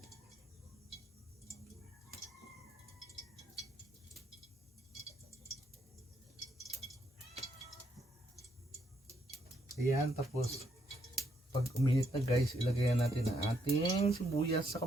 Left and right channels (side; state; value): both; normal; correlation 0.75